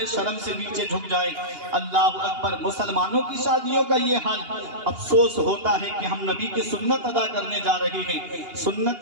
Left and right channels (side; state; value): left; late; 2.8 ms